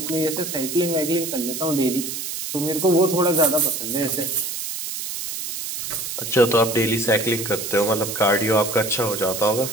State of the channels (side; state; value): right; noise; hiss, 5 dB below the sound